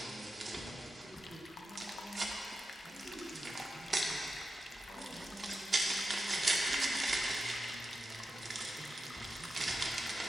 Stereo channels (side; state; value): both; normal; correlation 0.89